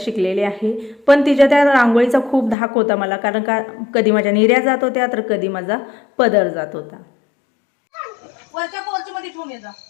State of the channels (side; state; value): right; drops out; at 2.6 s